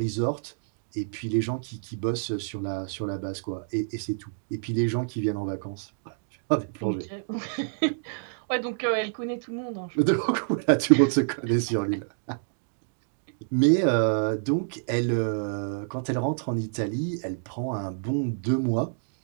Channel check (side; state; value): left; silent; digital silence